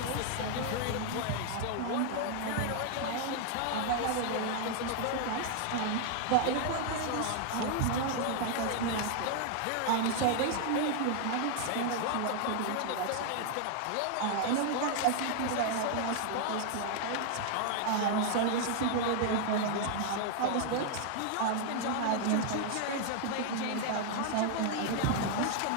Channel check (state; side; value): different; both; correlation 0.00